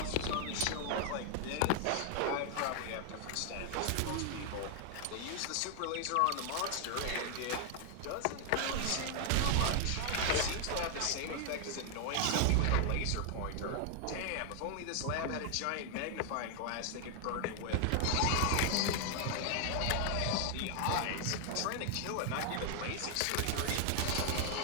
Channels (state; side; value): different; both; correlation 0.00